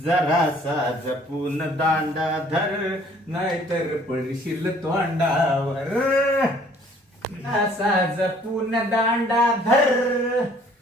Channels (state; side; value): normal; both; correlation 0.57